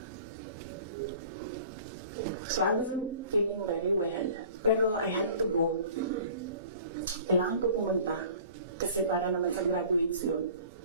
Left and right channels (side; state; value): both; inverted; correlation -0.46